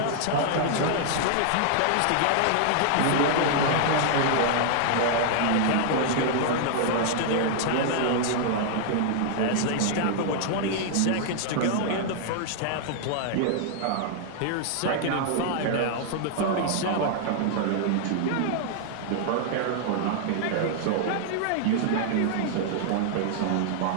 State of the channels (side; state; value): both; different; correlation -0.01